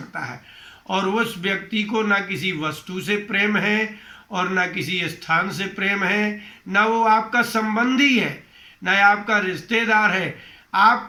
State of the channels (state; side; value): identical; both; correlation 1.00